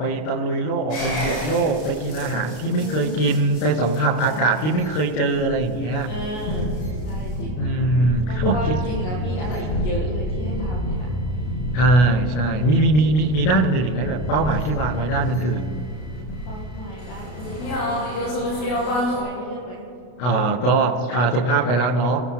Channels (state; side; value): late; right; 33 ms